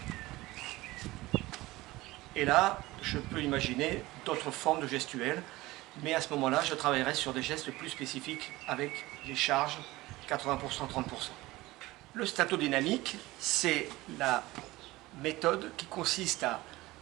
Et là, je peux imaginer d'autres formes de gestuelles, mais à ce moment-là, je travaillerai sur des gestes plus spécifiques avec les charges 80%, 30%. Le statodynamique, c'est la méthode qui consiste à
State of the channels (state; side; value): quieter; left; 19.2 dB